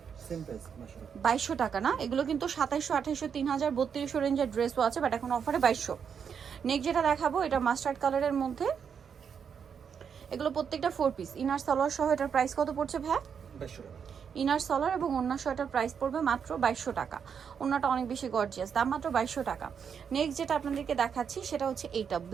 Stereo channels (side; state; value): left; quieter; 7.1 dB